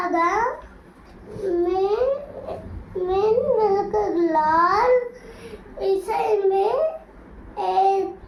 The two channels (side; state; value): both; identical; correlation 1.00